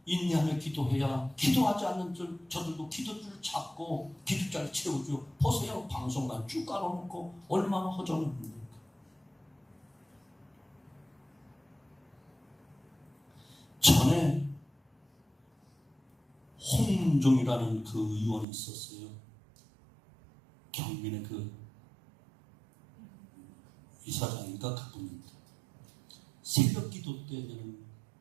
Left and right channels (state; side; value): drops out; left; at 18.4 s